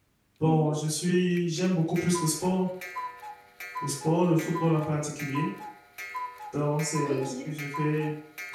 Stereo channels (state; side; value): identical; both; correlation 1.00